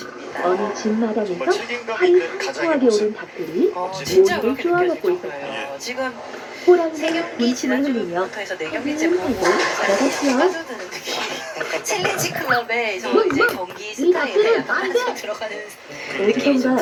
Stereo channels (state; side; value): identical; both; correlation 1.00